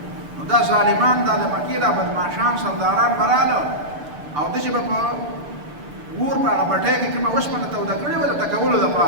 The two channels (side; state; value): left; late; 6.8 ms